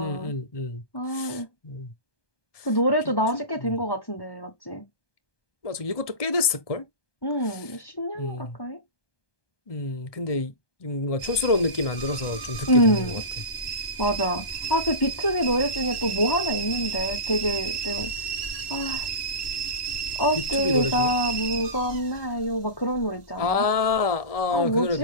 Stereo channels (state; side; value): late; right; 1.2 ms